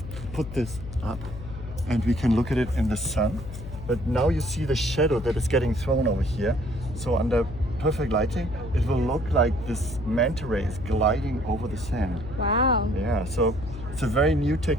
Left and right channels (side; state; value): left; noise; hum, 11 dB below the sound